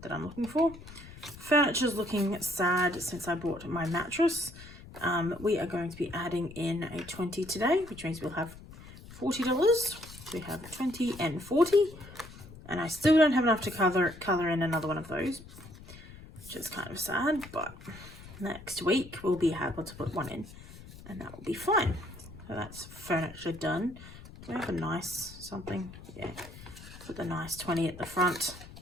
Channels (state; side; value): noise; left; rumble, 17 dB below the sound